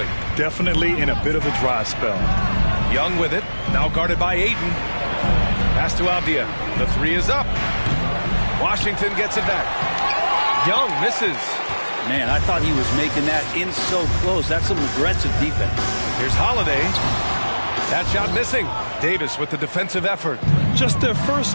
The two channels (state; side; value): inverted; both; correlation -1.00